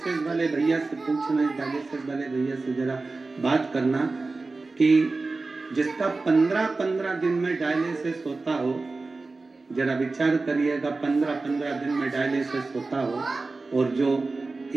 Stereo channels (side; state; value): left; quieter; 3.6 dB